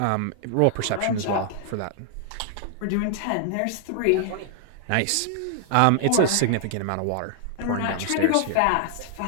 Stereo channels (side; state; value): both; different; correlation 0.00